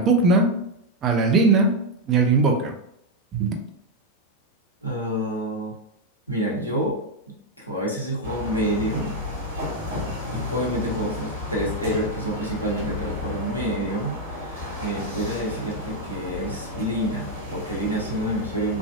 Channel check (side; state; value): both; normal; correlation 0.02